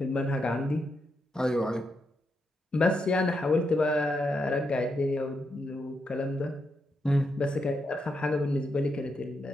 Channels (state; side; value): normal; both; correlation 0.82